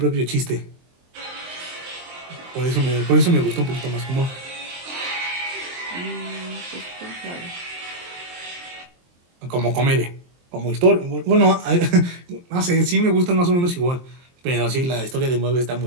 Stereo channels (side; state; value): left; late; 23 ms